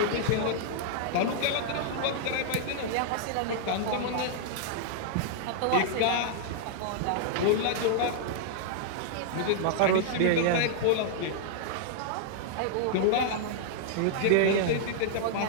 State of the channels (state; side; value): different; both; correlation -0.01